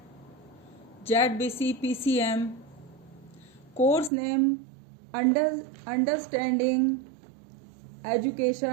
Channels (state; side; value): drops out; left; at 4.1 s